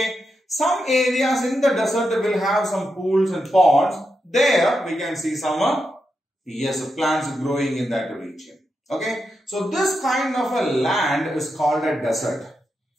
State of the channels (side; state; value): both; normal; correlation 0.86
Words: Some areas in the desert will have some pools and ponds. There we can see some plants growing in that region. Okay. So this kind of a land is called a desert.